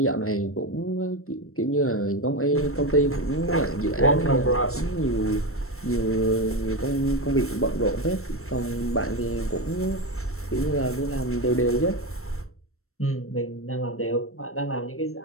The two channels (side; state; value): right; late; 0.63 ms